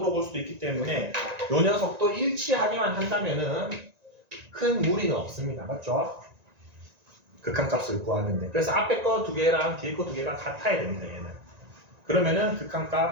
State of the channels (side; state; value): left; late; 1.9 ms